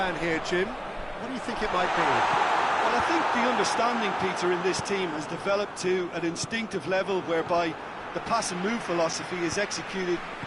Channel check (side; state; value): both; identical; correlation 1.00